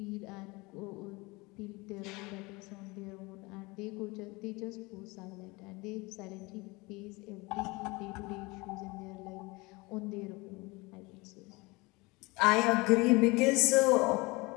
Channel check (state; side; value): quieter; right; 24.6 dB